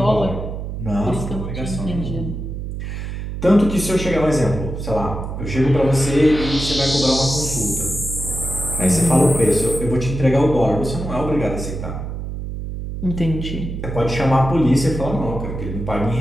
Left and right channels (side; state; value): right; noise; hum, 6 dB below the sound